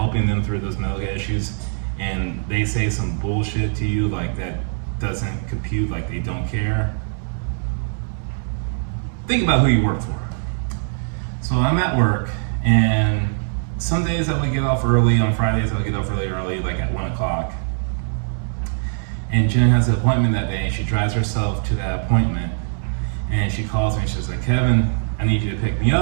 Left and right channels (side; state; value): left; silent; 62 dB below the other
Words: them through those medical issues, and they say some bullshit to you like that doesn't compute, like they don't care, think about who you work for. So I'm at work, and some days I would get off early. On Fridays I would get off really early, like at 1 o'clock. And Jen has an appointment that day, and she drives herself to that appointment. And she calls me and she's like, "Kevin, I need you to pick me